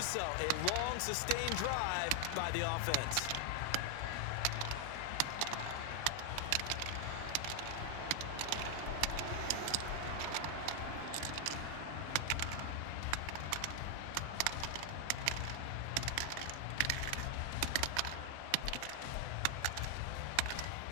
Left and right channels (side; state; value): both; different; correlation 0.00